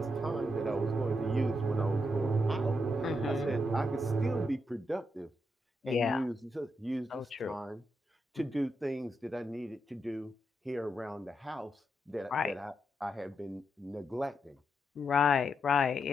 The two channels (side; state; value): both; normal; correlation 0.82